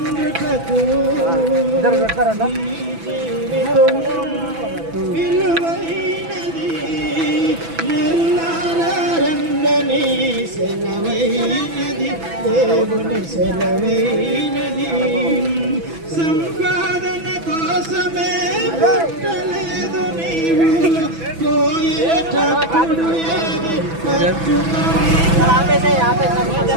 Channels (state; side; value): late; left; 6.0 ms